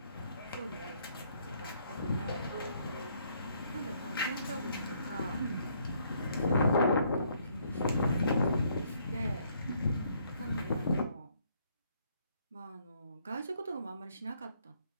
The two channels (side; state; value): both; inverted; correlation -0.68